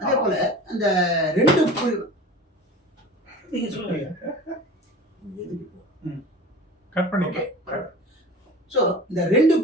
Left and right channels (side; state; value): both; normal; correlation 0.37